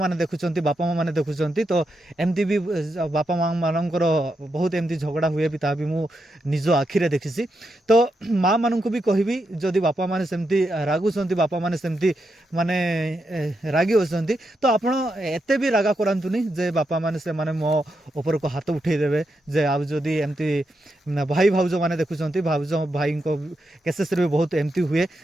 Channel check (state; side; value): normal; both; correlation 0.84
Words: देखुंट बापा माँ मैंने देखुंट तो एमती भी बापा माँ मानकर बहुत एमती झगड़ा हुए भी ता भी मु निज आखिरे देखी तो माँ मान को भी कहबी जदि बापा माने सेमती रागुंट बापा माने सेमती माने रागी होती तो आपण एते भी रागा करातुनी जे बापा माने से माने मो ऊपर को हाथ उठेदेवे जे आ जदि एमती भाई भाउज मैंने देखुंट भाउज भाई को केसेस भी बहुत एमती हुए